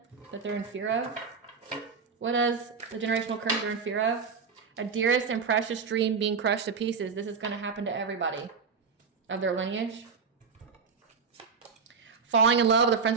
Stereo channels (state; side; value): quieter; left; 5.4 dB